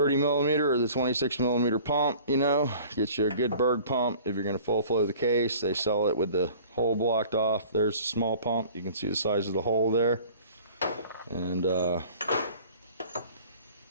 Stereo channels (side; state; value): both; inverted; correlation -0.48